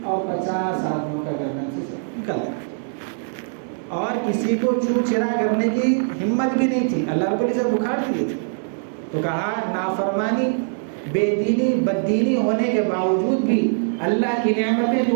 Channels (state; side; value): silent; left; digital silence